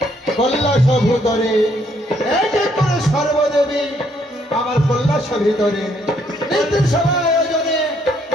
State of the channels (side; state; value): both; normal; correlation 0.69